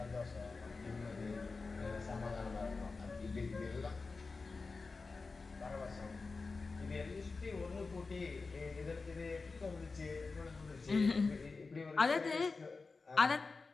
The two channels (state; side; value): quieter; right; 4.1 dB